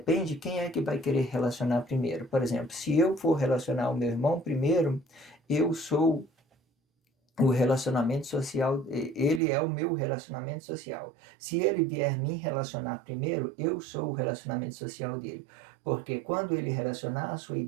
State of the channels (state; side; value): drops out; left; at 9.4 s